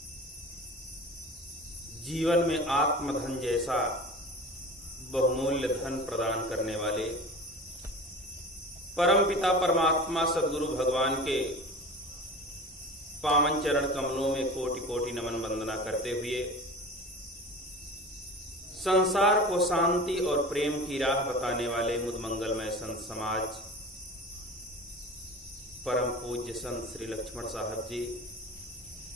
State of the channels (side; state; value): both; normal; correlation 0.35